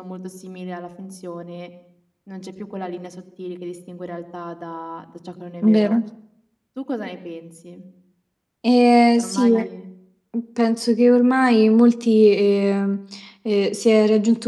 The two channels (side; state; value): both; identical; correlation 1.00